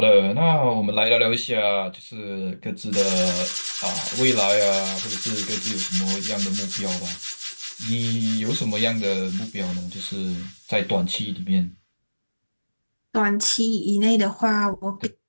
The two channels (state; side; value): inverted; both; correlation -1.00